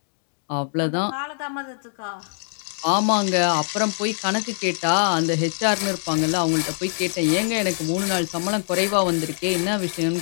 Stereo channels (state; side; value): silent; right; digital silence